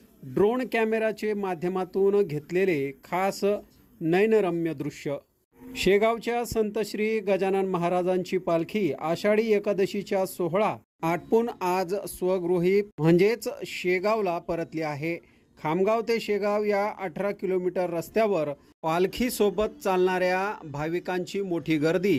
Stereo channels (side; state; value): both; identical; correlation 1.00